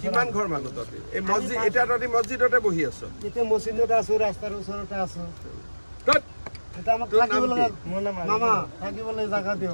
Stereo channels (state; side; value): inverted; both; correlation -1.00